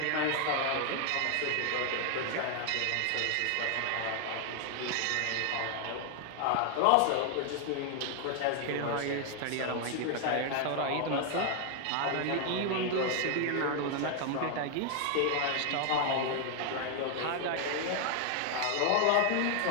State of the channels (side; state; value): both; different; correlation 0.00